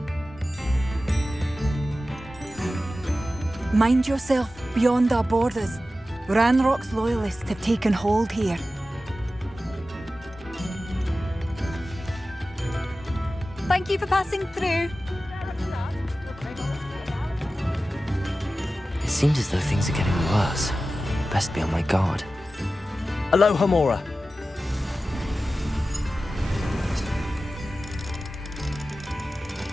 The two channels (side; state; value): both; normal; correlation 0.94